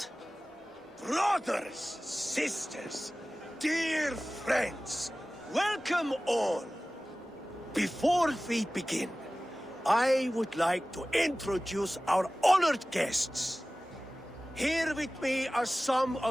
Brothers, sisters, dear friends, welcome all. Before we begin, I would like to introduce our honored guests. Here with me are some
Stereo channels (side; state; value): both; normal; correlation 0.97